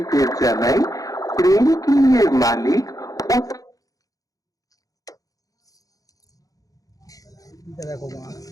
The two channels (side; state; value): right; late; 0.17 ms